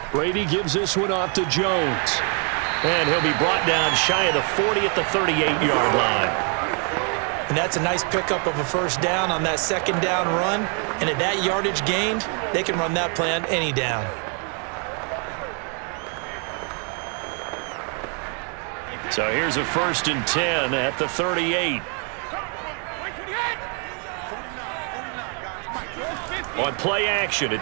Brady gives this one off to Jones. And he'll be brought down shy of the 40 at the 38-yard line. And that's a nice pickup of a first down on that second down run. And at that yardage gained, they can run that play on any down. So here's a 1st and 10 at the 38. On play action,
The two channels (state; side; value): quieter; left; 39.5 dB